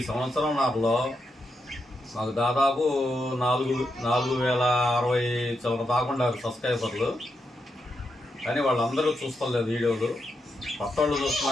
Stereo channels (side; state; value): both; normal; correlation 0.84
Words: సంవత్సరంలో మాకు దాదాపు 4,060 చిల్లర దాకుండా సబ్స్క్రైబర్లు. కానీ వాళ్ళందరూ చూస్తలేదు వీడియోలు. పట్టోళ్ళు